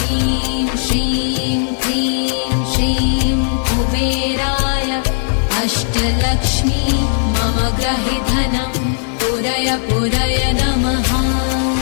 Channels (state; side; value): silent; right; digital silence